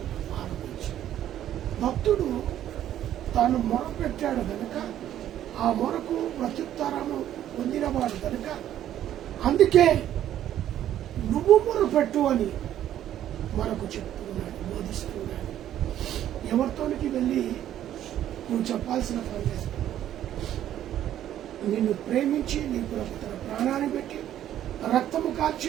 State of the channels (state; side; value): quieter; left; 11.5 dB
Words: ఆరంభించు. భక్తుడు తాను మొరపెట్టాడు కనుక ఆ మొరకు ప్రత్యుత్తరము పొందినవాడు కనుక అందుకే నువ్వు మొరపెట్టు అని మనకు చెప్తున్నాడు, బోధిస్తున్నాడు. ఎవరితోనికి వెళ్ళి నువ్వు చెప్పాల్సిన పని లేదు. నిన్ను ప్రేమించి నీ కొరకు తన ప్రాణాన్ని పెట్టి రక్తము కాల్చి